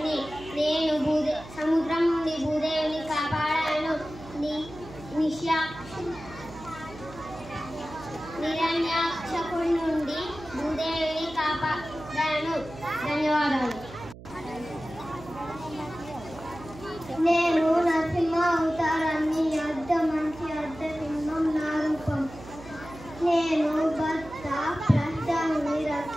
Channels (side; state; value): right; noise; hum, 16 dB below the sound